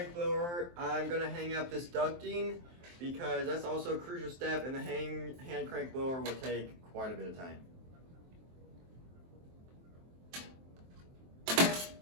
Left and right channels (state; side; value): late; left; 23 ms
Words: blower, I'm gonna hang up this ducting because that's also a crucial step, and the hand crank blower will take quite a bit of time.